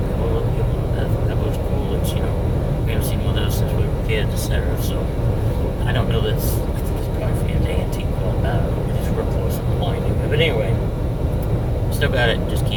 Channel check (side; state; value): both; identical; correlation 1.00